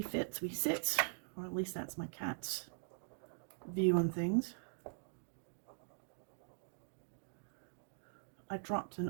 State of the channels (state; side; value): silent; left; digital silence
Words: fit, we sit. Or at least that's my cat's view on things. I dropped an